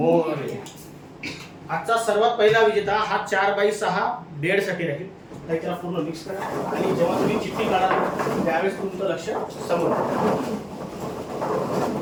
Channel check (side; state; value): both; identical; correlation 1.00